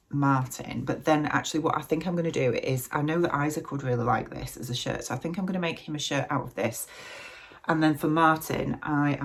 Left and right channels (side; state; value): both; identical; correlation 1.00